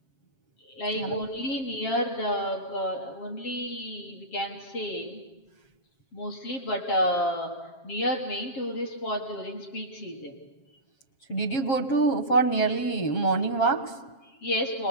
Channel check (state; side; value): late; right; 7.4 ms